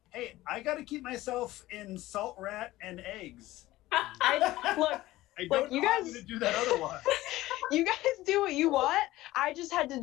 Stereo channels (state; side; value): quieter; right; 17.0 dB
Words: Hey, I gotta keep myself in salt rat and eggs. Look, I Look, don't you know how I'm guys- gonna do that otherwise. you guys do what you want. I just had to